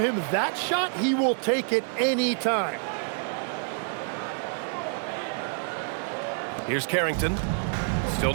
that shot, he will take it any time. Here's Carrington. Still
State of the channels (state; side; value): silent; left; 60 dB below the other